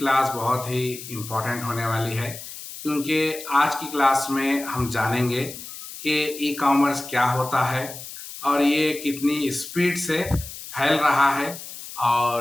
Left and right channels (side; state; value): left; noise; hiss, 12 dB below the sound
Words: बहुत ही इम्पोर्टेंट होने वाली है, क्योंकि आज की क्लास में हम जानेंगे कि ई कॉमर्स क्या होता है और ये कितनी स्पीड से फैल रहा है